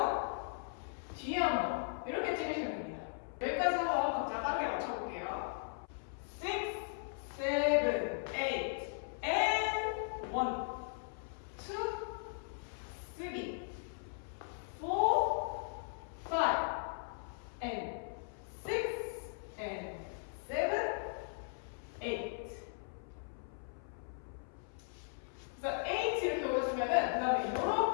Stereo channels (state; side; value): silent; right; 52 dB below the other